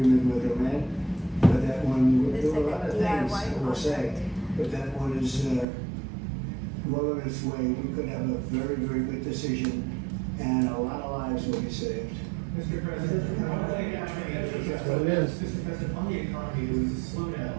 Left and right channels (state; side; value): drops out; left; at 5.7 s